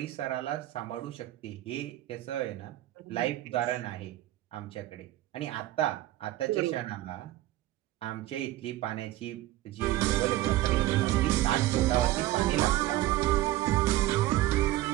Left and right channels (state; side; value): quieter; left; 15.6 dB